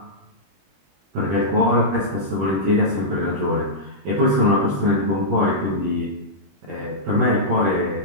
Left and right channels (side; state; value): left; late; 21 ms